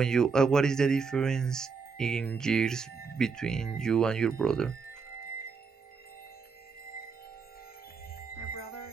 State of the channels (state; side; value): quieter; left; 5.2 dB